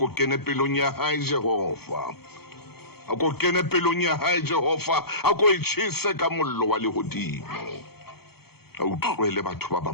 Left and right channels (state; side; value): late; right; 0.96 ms